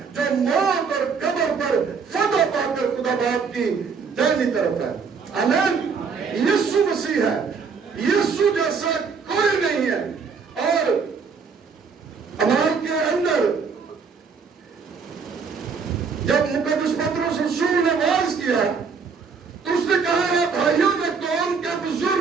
جو موت اور قبر پر فتح پا کر خدا باپ کی دائنی طرف ہے۔ آمین۔ یسوع مسیح ہے، یسوع جیسا کوئی نہیں ہے۔ اور اعمال کے اندر جب مقدس پطرس رسول نے واعظ کیا تو اس نے کہا، اے بھائیوں، میں قوم کے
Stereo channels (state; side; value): quieter; left; 5.5 dB